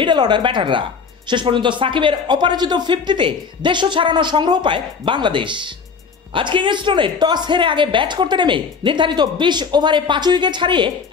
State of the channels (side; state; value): right; quieter; 5.6 dB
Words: অর্ডার ব্যাটাররা। শেষ পর্যন্ত সাকিবের অপরাজিত 50-তে 150 ছাড়ানো সংগ্রহ পায় বাংলাদেশ। আজ কিংস্টনে টস হেরে আগে ব্যাট করতে নেমে নির্ধারিত 20 ওভারে 5 উইকেট হারিয়ে